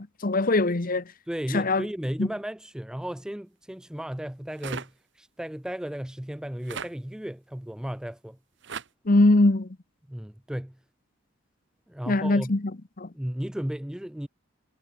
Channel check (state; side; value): normal; both; correlation 0.64